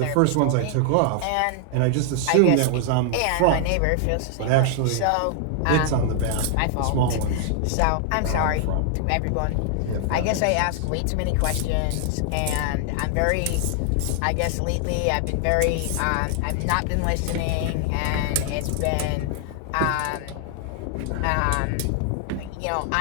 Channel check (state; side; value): different; both; correlation 0.00